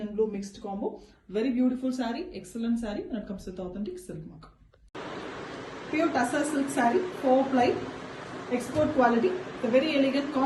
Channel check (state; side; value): identical; both; correlation 1.00